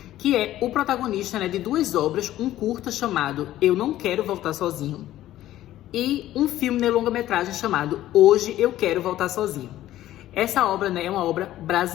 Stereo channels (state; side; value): quieter; right; 13.9 dB